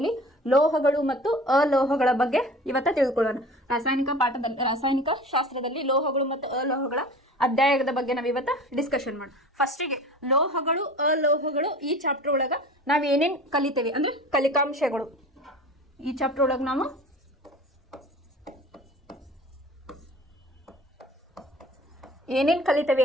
ಲೋಹಗಳು ಮತ್ತು ಅಲೋಹಗಳ ಬಗ್ಗೆ ಇವತ್ತು ತಿಳ್ಕೊಳ್ಳೋಣ. ರಾಸಾಯನಿಕ ಶಾಸ್ತ್ರದಲ್ಲಿ ಲೋಹಗಳು ಮತ್ತು ಅಲೋಹಗಳ ಅಧ್ಯಾಯದ ಬಗ್ಗೆ ನಾವು ಇವತ್ತು ಡಿಸ್ಕಷನ್ ಮಾಡೋಣ. ಫಸ್ಟಿಗೆ ಲೋಹಗಳು ಅಲೋಹಗಳು ಈ ಚಾಪ್ಟರ್ ಒಳಗೆ ನಾವು ಏನೇನು ಕಲಿತೇವೆ ಅಂದರೆ ಕಲಿಕಾಂಶಗಳು. ಈ ಚಾಪ್ಟರ್ ಒಳಗೆ ನಾವು ಏನೇನು ಕಲಿತೇವೆ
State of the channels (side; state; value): both; normal; correlation 0.40